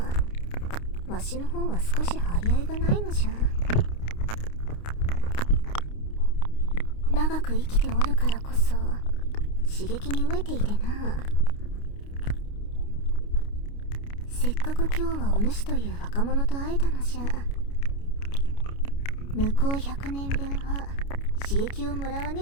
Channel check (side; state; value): right; late; 29 ms